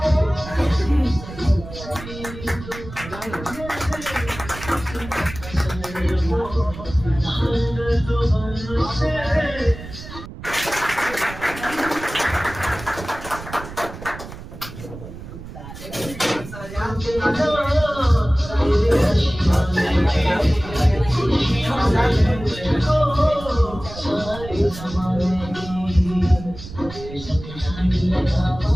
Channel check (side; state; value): right; noise; rumble, 13 dB below the sound